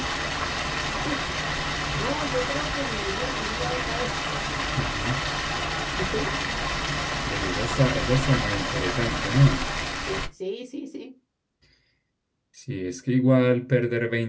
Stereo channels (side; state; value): both; identical; correlation 1.00